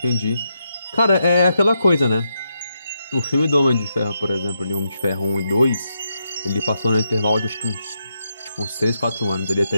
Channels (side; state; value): both; inverted; correlation -0.83